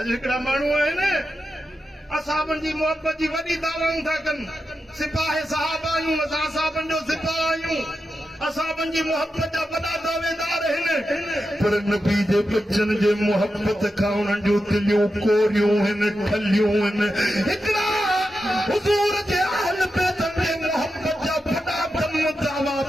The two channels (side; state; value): both; normal; correlation 0.89